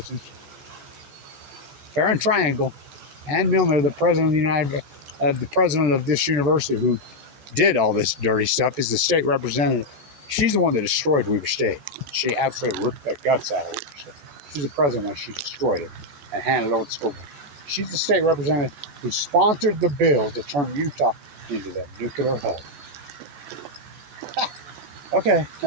Fair and Triangle. Ann Milner, the president of the president of this university who did all this dirty stuff, is the state representative. She's the one that destroyed Weber State. She absolutely ripped the guts out of Weber State. She's the president when she destroyed it and handed it over to the school board. She's the state representative who sponsored the bill to turn Utah into the nuclear hub. Okay.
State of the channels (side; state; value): left; late; 14 ms